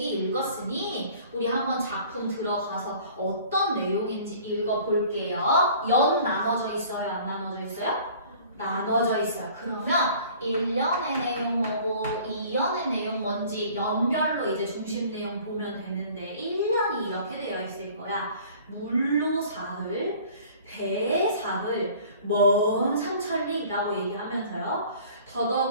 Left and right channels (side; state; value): both; inverted; correlation -0.49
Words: 읽었으니 우리 한번 작품 들어가서 어떤 내용인지 읽어볼게요. 연 나눠져 있어요? 안 나눠져 있어요? 나눠져 있어요. 그러면 1연의 내용 뭐고 2연의 내용 뭔지 연별로 이제 중심 내용 보면 되는데, 1년이 이렇게 되어 있을 거야. 물로 사흘, 배에 사흘, 먼 삼천리라고 얘기하면서요.